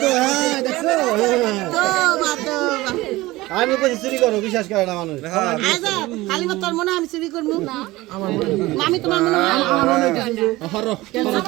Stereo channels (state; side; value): quieter; left; 19.3 dB